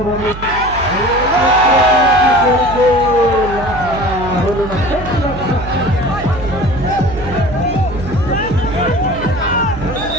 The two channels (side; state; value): right; noise; hum, 11 dB below the sound